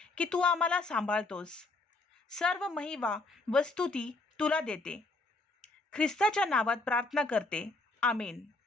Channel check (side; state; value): right; quieter; 3.2 dB